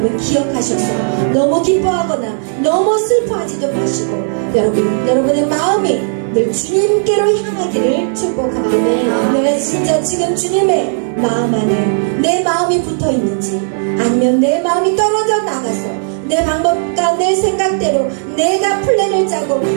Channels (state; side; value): silent; left; digital silence